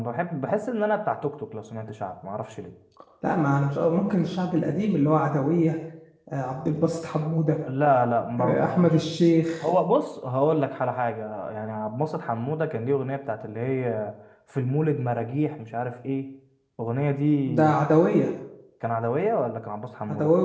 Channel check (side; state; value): both; identical; correlation 1.00